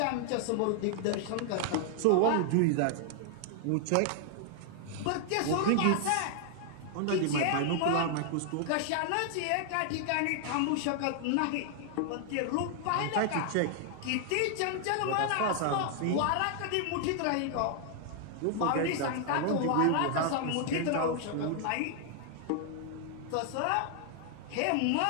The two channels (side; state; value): both; different; correlation 0.00